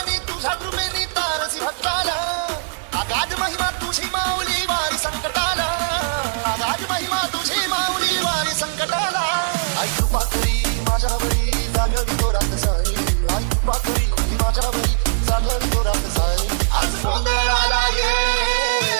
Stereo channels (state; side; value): silent; left; digital silence